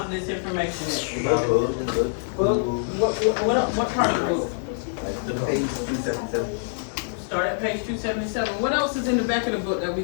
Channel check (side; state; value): right; silent; digital silence